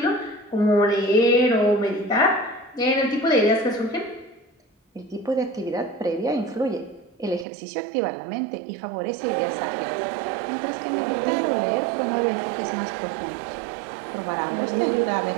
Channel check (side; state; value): left; drops out; at 7.5 s